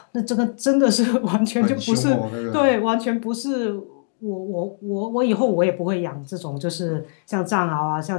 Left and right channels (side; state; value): right; silent; digital silence